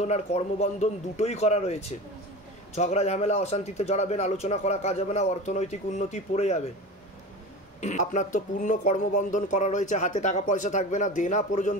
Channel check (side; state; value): both; normal; correlation 0.31